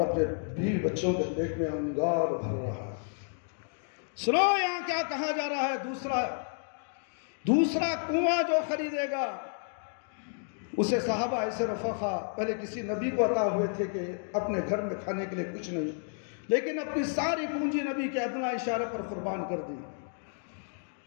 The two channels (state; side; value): silent; right; digital silence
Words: بیوی بچوں کے پیٹ میں انگار بھر رہا ہے۔ سنو یہاں کیا کہا جا رہا ہے؟ دوسرا کنواں جو خریدے گا اسے صحابہ ایسے رفقا پہلے کسی نبی کو عطا ہوئے تھے کہ اپنے گھر میں کھانے کے لیے کچھ نہیں، لیکن اپنی ساری پونجی نبی کے ادنا اشارے پر قربان کر دی۔